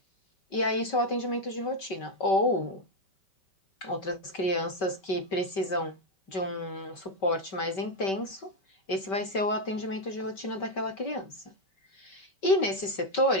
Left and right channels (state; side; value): late; right; 5.2 ms